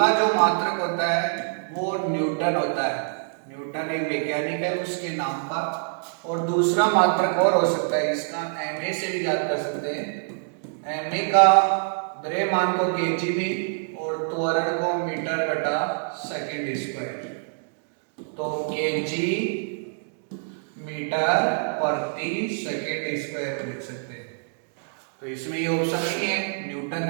जो मात्रक होता है वो न्यूटन होता है। न्यूटन एक वैज्ञानिक है उसके नाम का। और दूसरा मात्रक और हो सकता है, इसका एमए से भी याद कर सकते हैं। एमए का द्रव्यमान को केजी में और त्वरण को मीटर बटा सेकंड स्क्वायर। तो केजी मीटर प्रति सेकेंड स्क्वायर लिख सकते हैं। तो इसमें ये ऑप्शन नहीं है, न्यूटन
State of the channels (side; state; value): left; silent; digital silence